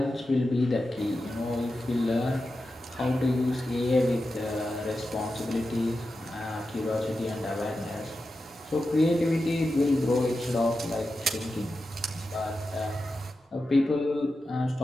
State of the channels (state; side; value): normal; both; correlation 0.91